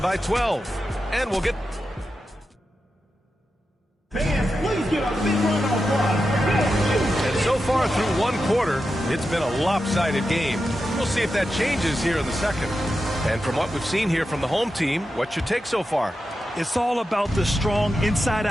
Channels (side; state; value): both; normal; correlation 0.90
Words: by 12. And we'll get... Fans, please give a big round of applause. And so far through one quarter, it's been a lopsided game. We'll see if that changes here in the second. And from what we've seen here from the home team, what's your take so far? It's all about the strong